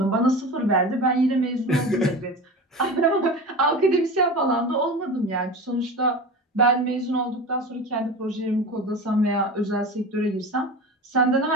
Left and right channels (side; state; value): both; normal; correlation 0.30